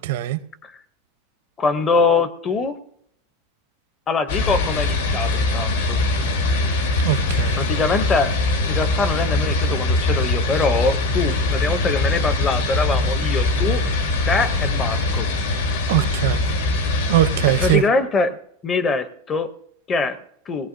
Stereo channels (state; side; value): normal; both; correlation 0.27